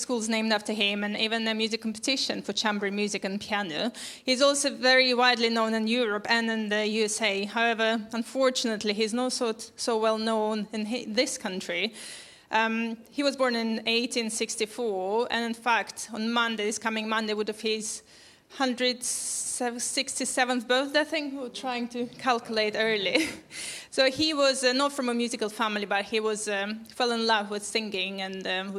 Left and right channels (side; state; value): both; identical; correlation 1.00